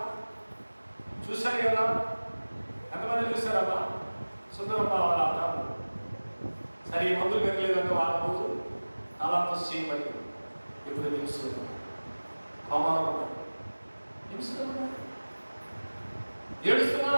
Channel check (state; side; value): inverted; both; correlation -1.00